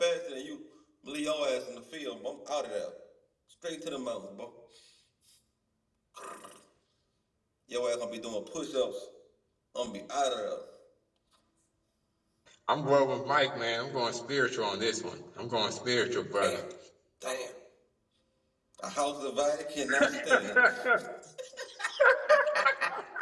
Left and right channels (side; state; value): both; identical; correlation 1.00